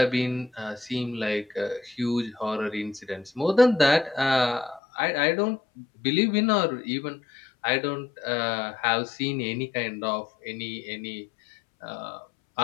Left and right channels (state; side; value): drops out; right; at 4.8 s